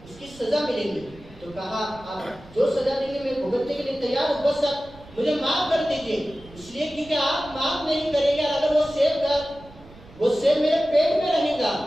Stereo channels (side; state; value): right; noise; rumble, 22 dB below the sound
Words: اس کی سزا ملے گی۔ تو کہا آپ جو سزا دیں گے میں بھگتنے کے لیے تیار ہوں، بس اب مجھے معاف کر دیجیے، اس لیے کیونکہ آپ معاف نہیں کریں گے، اگر وہ سیب میرے پیٹ میں رہے گا،